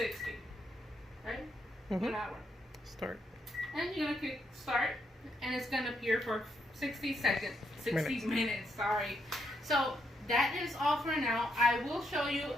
right? An hour. Start. And you're going to click start, and it's going to appear for 60 seconds. 60 minutes, sorry. So that is all for now. I will show you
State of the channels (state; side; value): normal; both; correlation 0.78